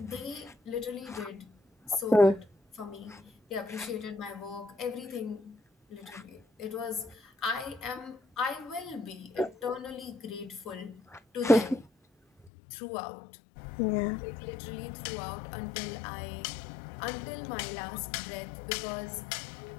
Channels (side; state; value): right; drops out; at 12.5 s